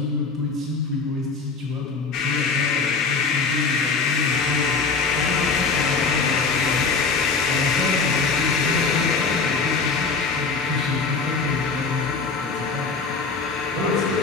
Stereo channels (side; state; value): right; quieter; 4.6 dB